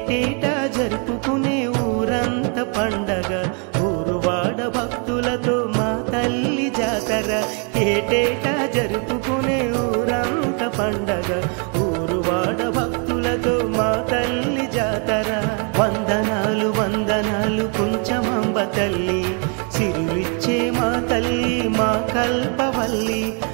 జరుపుకునే ఊరంత పండగ ఊరువాడ భక్తులతో మా తల్లి జాతర ఏటేటా జరుపుకునే ఊరంత పండగ ఊరు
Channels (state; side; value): quieter; left; 38.0 dB